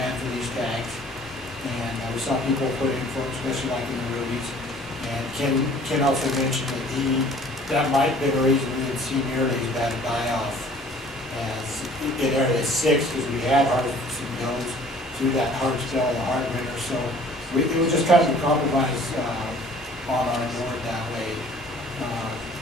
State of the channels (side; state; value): both; normal; correlation 0.52